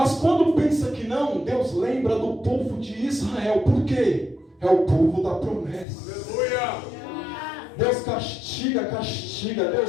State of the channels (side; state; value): right; drops out; at 5.9 s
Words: quando pensa que não, Deus lembra do povo de Israel. Por quê? É o povo da promessa. Aleluia! Deus castiga,